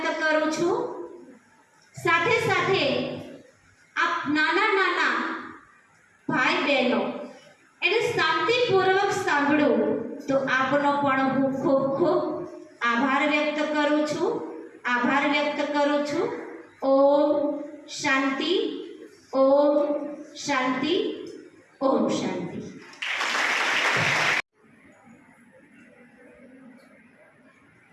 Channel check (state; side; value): identical; both; correlation 1.00